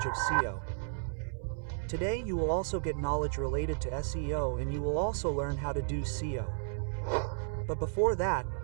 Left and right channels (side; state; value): left; silent; 56 dB below the other